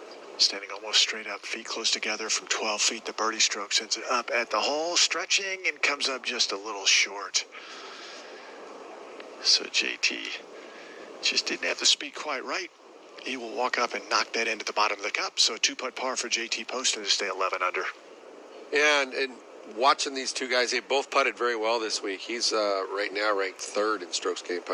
standing almost straight up, feet close together from 12 feet. The birdie stroke sends it up at the hole, stretching, and comes up just a little short. So JT just didn't have the speed quite right. He will walk up and knock that into the bottom of the cup. So a 2-putt par for JT Poston to stay 11 under. Yeah, and watching these two guys, they both putted very well this week. He's right now ranked 3rd in strokes gained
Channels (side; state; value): both; identical; correlation 1.00